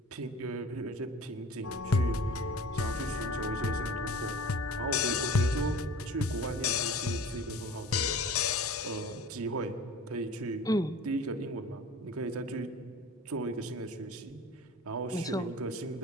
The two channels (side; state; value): both; normal; correlation 0.41